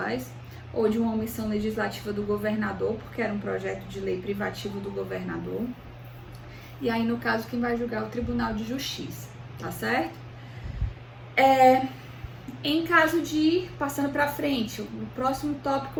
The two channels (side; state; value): both; identical; correlation 1.00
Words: ou de uma omissão legislativa do governador, porque era um projeto de lei privativo do governador. E aí, no caso, quem vai julgar é o Tribunal de Justiça, tá certo? Em caso de, passando para frente, o próximo